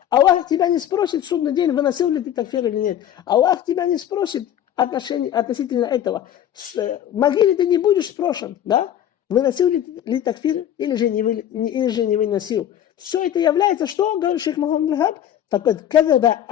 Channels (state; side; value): quieter; right; 10.6 dB